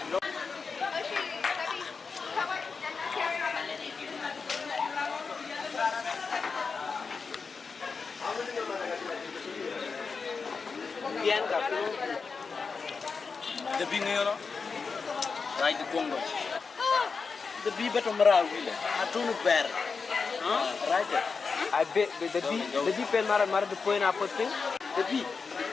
Biar kapu. The bing yo. Right the Congo. The bee betul merah gila. Atunu ber. Right. I bet the bee pen marah the point apa tu? The bee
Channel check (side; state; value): right; quieter; 5.0 dB